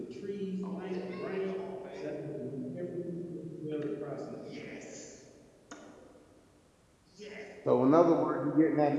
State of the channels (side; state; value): both; identical; correlation 1.00